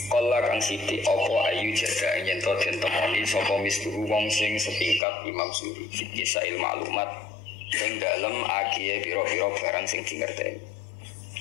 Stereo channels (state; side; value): drops out; right; at 5.0 s